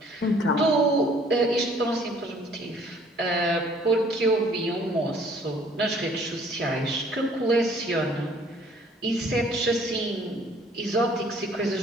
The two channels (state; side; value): normal; both; correlation 0.58